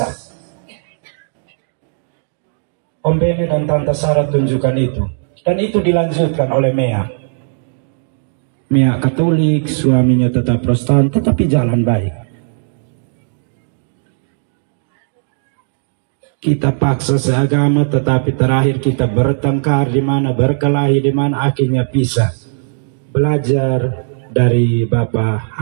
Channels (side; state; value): left; silent; 69 dB below the other